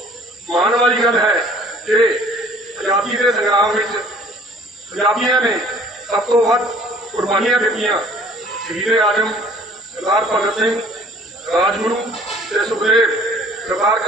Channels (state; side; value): normal; both; correlation 0.52